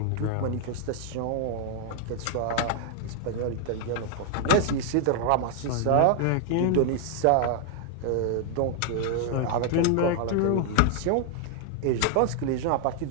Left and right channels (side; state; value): both; different; correlation 0.00